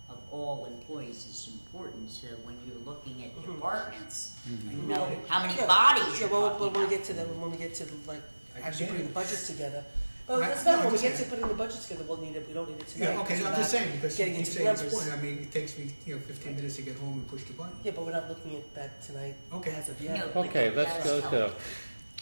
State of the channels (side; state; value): both; inverted; correlation -1.00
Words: of all employees is important. So when you're looking at departments, you know how many bodies yeah, you're well, talking when we about. get to when we get to like actually get putting it. the budgets together. Well, I- that's not no, when we I'm get just to putting the budgets together. We'll need it. We don't need it tonight. Yeah, okay, because so I'm we're just not saying, because getting you into say the it's numbers. important. I mean, it takes me 15 minutes to get home and push the button. Yeah, but we're not looking at that tonight. Okay. As of yet. No. Okay, But let's go that'll